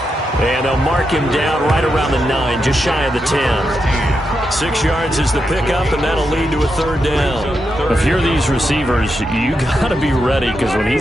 And they'll mark him down right around the 9, just shy of the 10. 6 yards is the pickup, and that'll lead to a 3rd down. If you're these receivers, you got to be ready, because when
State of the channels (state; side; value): normal; both; correlation 0.85